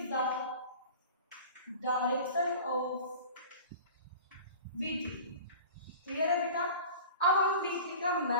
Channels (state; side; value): inverted; both; correlation -0.39